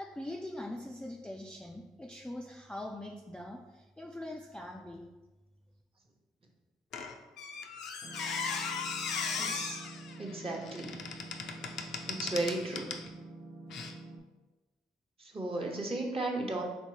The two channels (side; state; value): both; normal; correlation 0.63